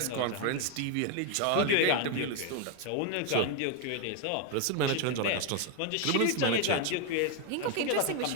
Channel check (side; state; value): both; different; correlation 0.01